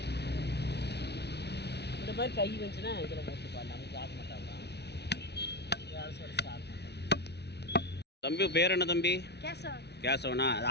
இந்த மாதிரி கை வந்துச்சுன்னா இதில் போட்டுப்பாங்க. நமக்கு சாப்பிட மாட்டாங்க. தம்பி பேர் என்ன தம்பி? கேசவன். கேசவனா?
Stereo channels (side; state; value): right; late; 0.49 ms